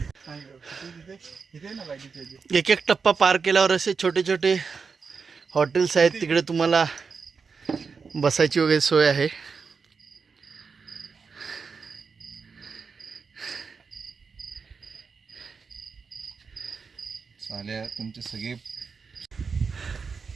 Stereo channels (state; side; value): quieter; left; 5.3 dB